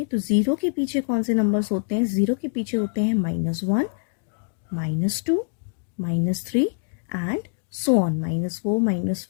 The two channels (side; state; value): right; silent; digital silence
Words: तो ज़ीरो के पीछे कौन से नंबर्स होते हैं? ज़ीरो के पीछे होते हैं -1, -2, -3 एंड सो ऑन, -4,